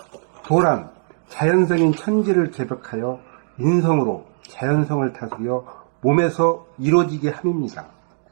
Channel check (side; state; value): left; silent; 65 dB below the other